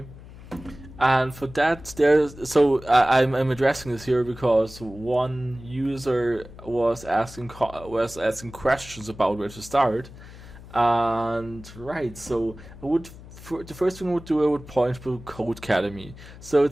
And for that, I'm addressing this here because one user was asking questions about where to start. And right, so the first thing I would point to Codecademy. So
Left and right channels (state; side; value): noise; left; hum, 17 dB below the sound